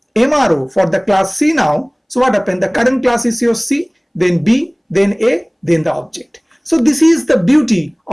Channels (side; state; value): both; identical; correlation 1.00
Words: MRO for the class C now, so what happened? The current class is your C, then B, then A, then the object. So this is the beauty